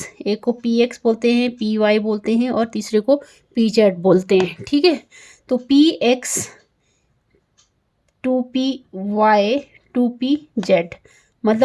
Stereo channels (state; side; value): identical; both; correlation 1.00